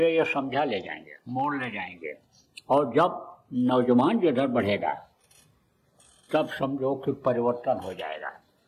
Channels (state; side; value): identical; both; correlation 1.00